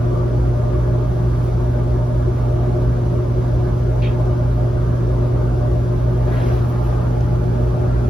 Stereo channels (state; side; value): normal; both; correlation 0.90